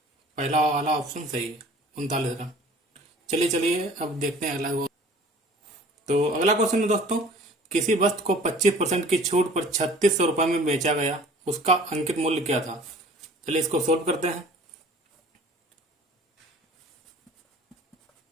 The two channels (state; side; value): normal; both; correlation 0.49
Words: पहला वाला ऑप्शन सही है, 39 रन। चलिए अब देखते हैं अगला। तो अगला क्वेश्चन है दोस्तों, किसी वस्तु को 25% की छूट पर 3600 रुपये में बेचा गया, उसका अंकित मूल्य क्या था? चलिए इसको सोल्व करते हैं।